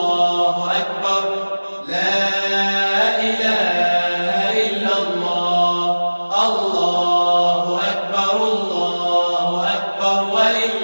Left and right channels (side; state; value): both; inverted; correlation -1.00